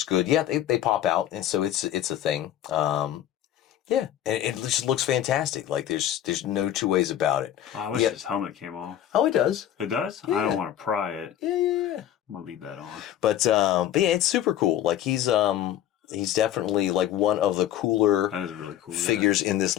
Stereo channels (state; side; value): quieter; right; 11.5 dB